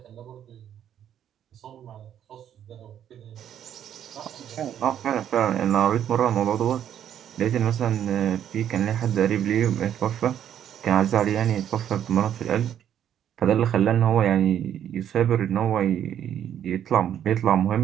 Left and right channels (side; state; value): left; quieter; 10.0 dB